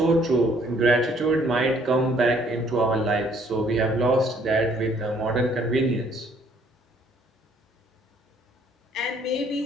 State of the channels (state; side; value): normal; both; correlation 0.63